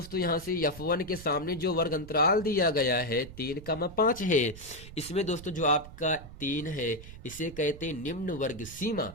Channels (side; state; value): right; noise; rumble, 15 dB below the sound